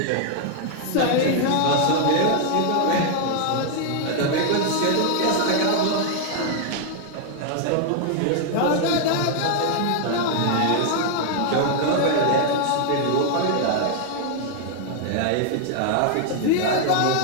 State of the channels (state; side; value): different; both; correlation 0.00